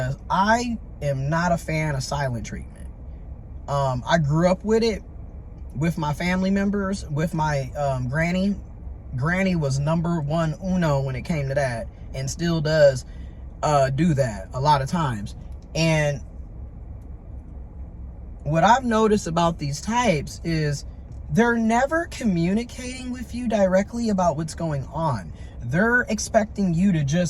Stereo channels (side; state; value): both; identical; correlation 1.00